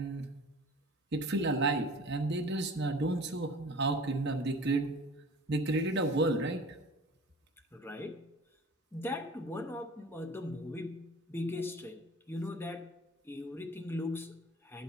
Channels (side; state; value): both; normal; correlation 0.43